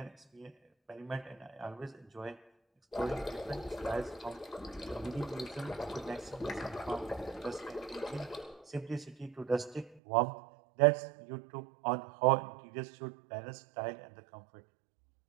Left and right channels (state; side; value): drops out; left; at 10.0 s